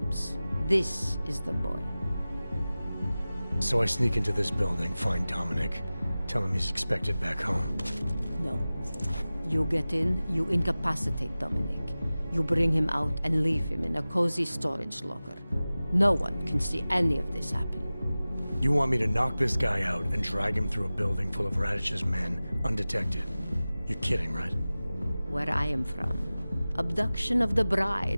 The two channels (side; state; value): both; inverted; correlation -0.97